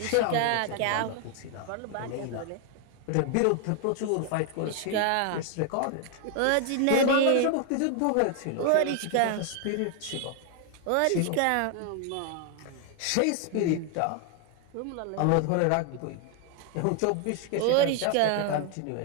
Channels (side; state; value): both; different; correlation 0.00